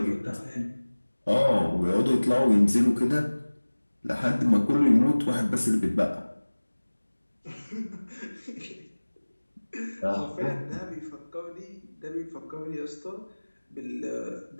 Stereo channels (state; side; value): inverted; both; correlation -1.00